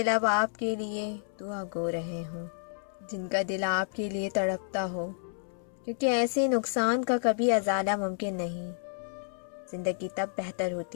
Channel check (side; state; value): right; silent; 58 dB below the other